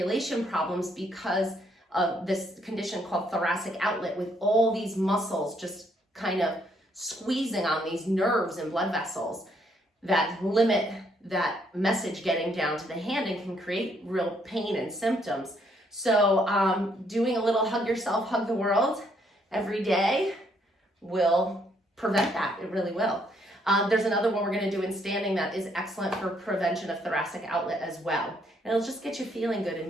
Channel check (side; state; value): both; normal; correlation 0.70